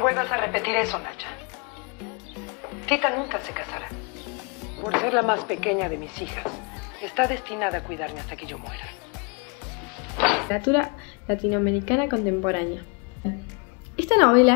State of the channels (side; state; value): right; quieter; 33.5 dB